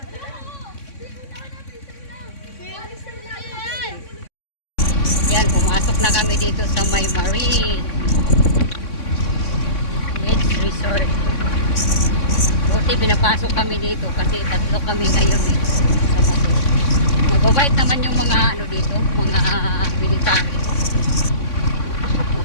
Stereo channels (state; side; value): late; right; 3.6 ms